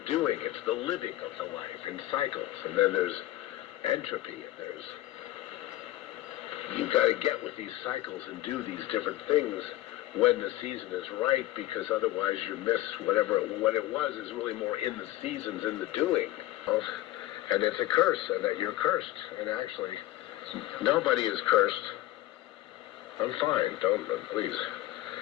it's the living of the life in cycles. And then there's entropy, and you've got to get with these cycles and do these different things when the season is right, because otherwise you miss whatever what it was is really more in the seasons, in the doing. And it's a curse, and that you're cursed. And actually, nobody is cursed. I'm fine. Don't, please.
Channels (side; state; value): right; quieter; 15.8 dB